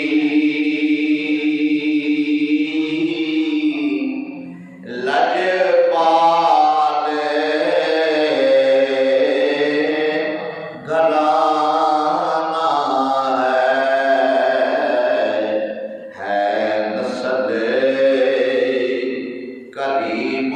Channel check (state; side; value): identical; both; correlation 1.00